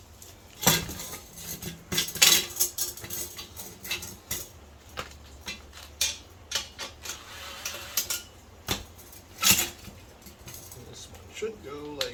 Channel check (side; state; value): both; identical; correlation 1.00